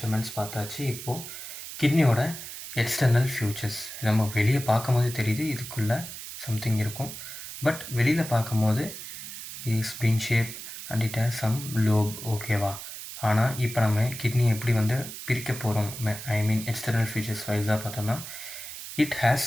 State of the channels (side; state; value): right; noise; hiss, 10 dB below the sound